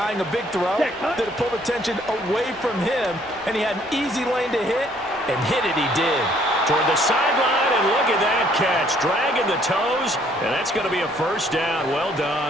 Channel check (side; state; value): both; normal; correlation 0.63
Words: a big throw that it pulled attention away from him, and he had an easy lane to hit, and hit it he did. Toward the sideline, and look at that catch. Dragging the toes, and that's going to be a first down. Well